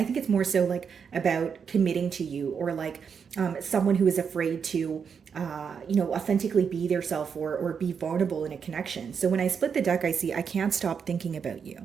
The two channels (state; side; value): quieter; left; 6.6 dB